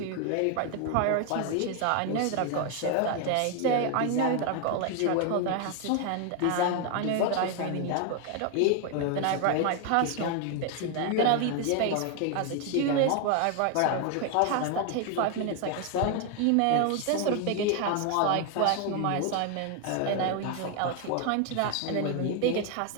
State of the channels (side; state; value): both; different; correlation 0.01